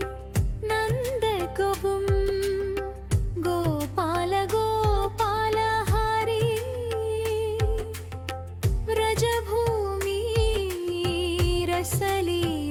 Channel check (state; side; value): identical; both; correlation 1.00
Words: నంద కబుం గోపాల గోపాల హరి వ్రజభూమి